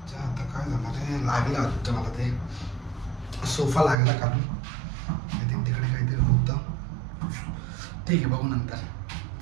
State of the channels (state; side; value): drops out; left; at 4.0 s